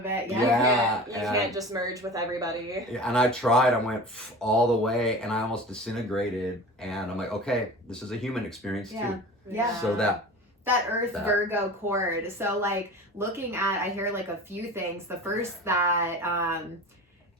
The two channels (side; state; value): both; normal; correlation 0.36